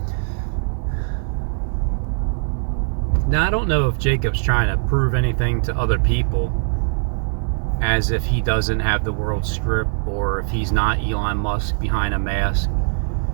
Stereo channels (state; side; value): silent; left; 59 dB below the other